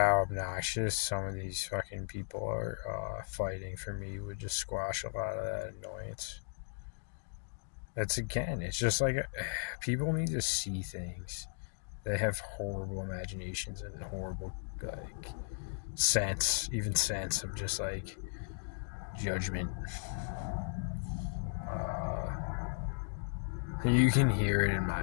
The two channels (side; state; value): right; silent; digital silence